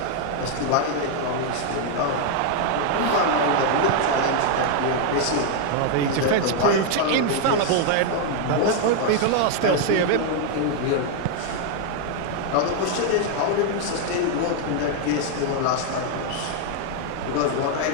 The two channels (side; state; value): both; different; correlation 0.00